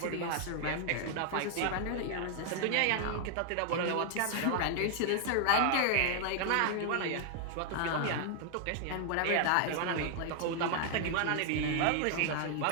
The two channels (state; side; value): different; both; correlation 0.00